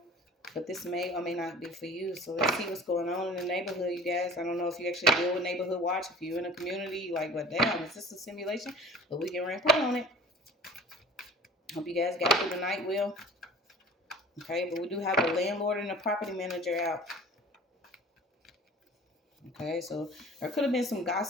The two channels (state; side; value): normal; both; correlation 0.45